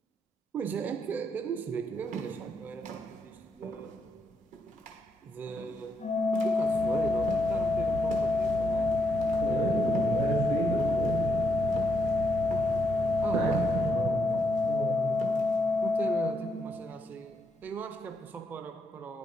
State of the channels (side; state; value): both; normal; correlation 0.79